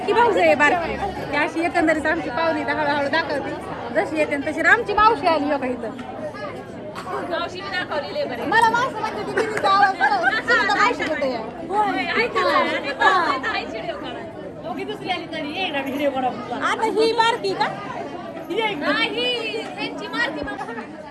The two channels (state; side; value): identical; both; correlation 1.00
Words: भाऊज आहे बारकी. ती अशी एकंदरीत आमची पाहुणी हळूहळू दाखवते. जशी येते तशी आमची मावशी आली योगा इथं. मला मावशी म्हणते ती बिनीचा आवाज सुनीता मावशी होते. आता ही बारकी का?